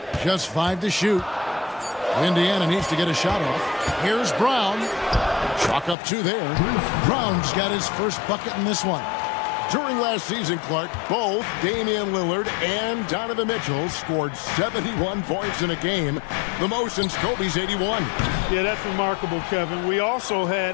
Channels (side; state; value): right; drops out; at 6.0 s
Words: Just 5 to shoot. Indiana needs to get a shot off. Here's Brown. Chalk up 2 there. Brown's got his first bucket in this one. During last season, Clark, both Damian Lillard and Donovan Mitchell scored 71 points in a game, the most since Kobe's 81. Yeah, that's remarkable, Kevin. We also